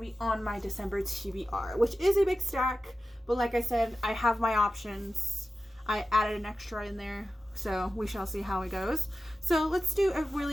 be on my December TBR, which is a big stack. But like I said, I have my options. I added an extra in there. So we shall see how it goes. So let's do a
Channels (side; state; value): both; normal; correlation 0.94